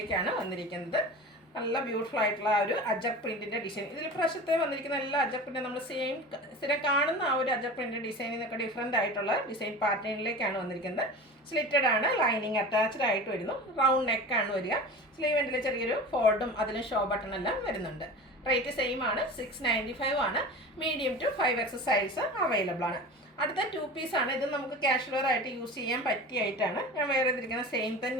വന്നിരിക്കുന്നത്. നല്ല ബ്യൂട്ടിഫുൾ ആയിട്ടുള്ള ആ ഒരു അജർ പ്രിന്റിൻ്റെ ഡിസൈൻ. ഇതിൽ പ്രാവശ്യത്തെ വന്നിരിക്കുന്ന എല്ലാ അജർ പ്രിന്റ് നമ്മൾ സ്ഥിരം കാണുന്ന ആ ഒരു അജർ പ്രിന്റ് ഡിസൈനിൽ നിന്നൊക്കെ ഡിഫറെൻ്റ് ആയിട്ടുള്ള ഡിസൈൻ പാറ്റേണിലേക്കാണ് വന്നിരിക്കുന്നത്. സ്ലിറ്റഡ് ആണ്. ലൈനിങ് അറ്റാച്ച്ഡ് ആയിട്ട് വരുന്നു. റൗണ്ട് നെക്കാണ് വരിക. സ്ലീവ് എൻഡിൽ ചെറിയൊരു ഫോൾഡും അതിലും ഷോ ബട്ടൺ എല്ലാം വരുന്നുണ്ട്. റേറ്റ് സെയിം ആണ്. 695 ആണ്. Medium to 5X size available ആണ്. അടുത്ത 2 പീസാണ്. ഇത് നമുക്ക് കാഷ്വൽ വെയർ ആയിട്ട് യൂസ് ചെയ്യാൻ പറ്റിയായിട്ടാണ് ഞാൻ വെയർ ചെയ്തിരിക്കുന്നത്. സെയിം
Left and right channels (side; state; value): both; normal; correlation 0.34